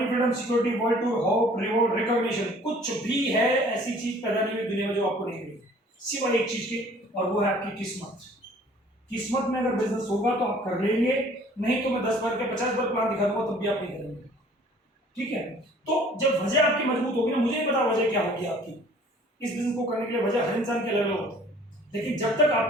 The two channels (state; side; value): normal; both; correlation 0.53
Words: freedom, security, world tour, hope, reward, recognition, कुछ भी है ऐसी चीज पैदा नहीं हुई दुनिया में जो आपको नहीं मिली, सिवाय एक चीज के, और वो है आपकी किस्मत। किस्मत में अगर बिजनेस होगा तो आप कर लेंगे, नहीं तो मैं 10 बार के 50 बार प्लान दिखा दूंगा तब भी आप नहीं करेंगे। ठीक है, तो जब वजह आपकी मजबूत होगी ना, मुझे नहीं पता वजह क्या होगी आपकी इस बिजनेस को करने के लिए, वजह हर इंसान की अलग अलग होती है, लेकिन जब तक